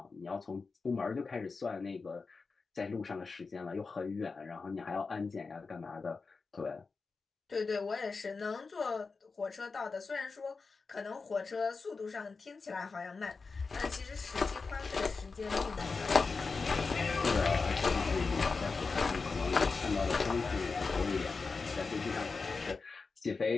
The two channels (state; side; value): quieter; right; 4.4 dB